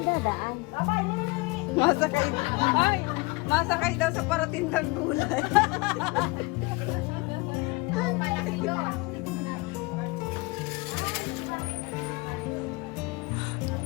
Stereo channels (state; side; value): quieter; right; 25.1 dB